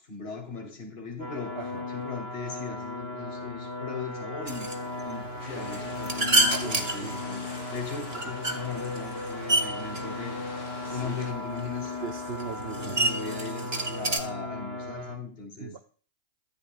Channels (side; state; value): left; late; 2.9 ms